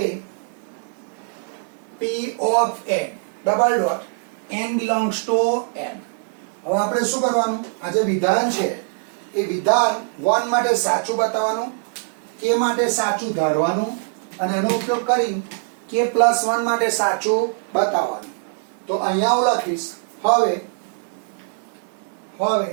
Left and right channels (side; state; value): left; silent; digital silence